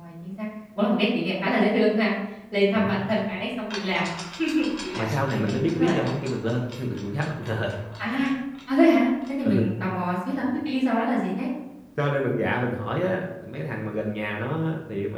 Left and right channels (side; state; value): both; identical; correlation 1.00